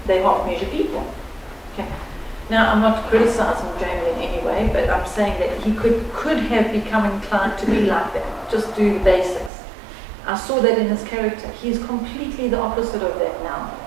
they half measure people. Okay? Now I'm not criticizing Jamie in any way, but I'm saying that he could have become inclined to be like that. Just do the basics. I saw that in his character. He's completely the opposite of that now,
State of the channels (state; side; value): drops out; left; at 9.5 s